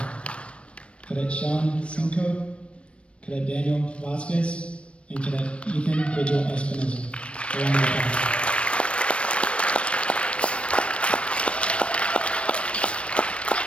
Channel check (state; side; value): late; right; 0.060 ms